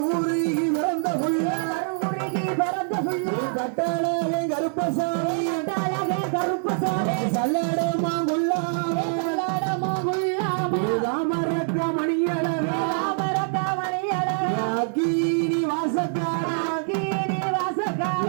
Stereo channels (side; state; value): left; silent; digital silence